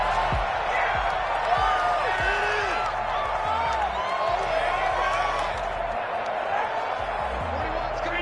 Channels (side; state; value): both; identical; correlation 1.00